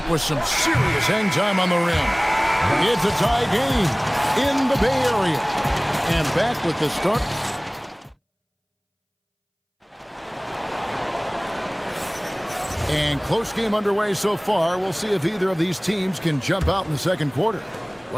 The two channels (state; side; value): identical; both; correlation 1.00